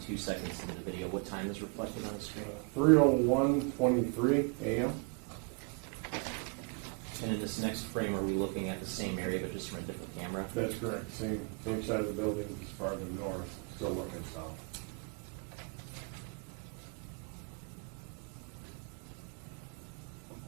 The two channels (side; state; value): left; quieter; 33.3 dB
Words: seconds into the video, what time is reflected on the screen? 3:01:23 a.m. And in this next frame, are we looking at the same area but just from a different camera? That's correct. Same side of the building, just farther north, still looking south.